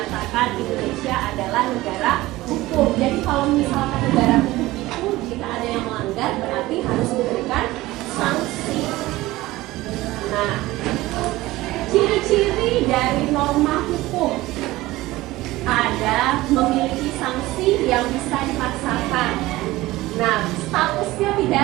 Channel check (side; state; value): left; quieter; 18.2 dB